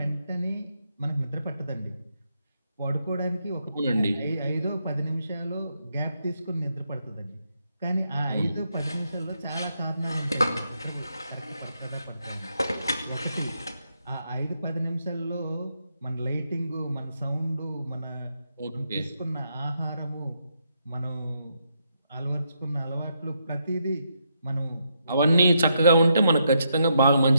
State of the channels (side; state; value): both; inverted; correlation -0.79